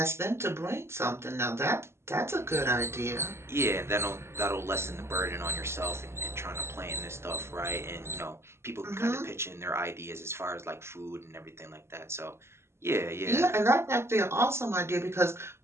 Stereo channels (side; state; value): left; late; 0.12 ms